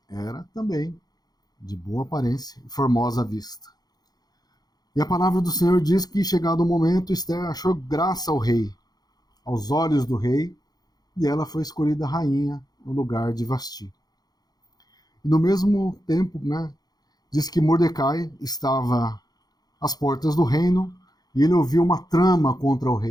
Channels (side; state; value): right; late; 0.19 ms